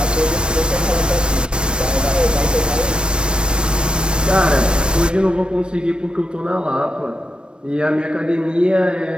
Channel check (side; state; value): left; late; 0.055 ms